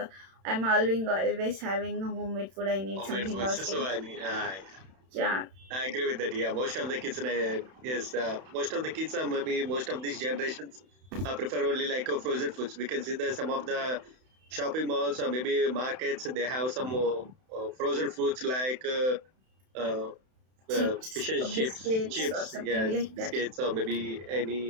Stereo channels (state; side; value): late; left; 31 ms